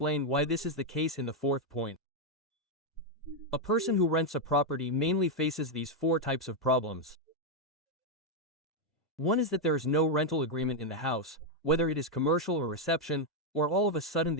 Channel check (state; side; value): normal; both; correlation 0.01